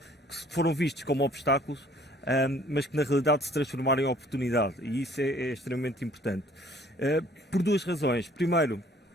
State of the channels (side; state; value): both; normal; correlation 0.57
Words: que foram vistas como obstáculos, mas que na realidade se transformaram em oportunidade, e isso é extremamente importante. Por duas razões. Primeiro,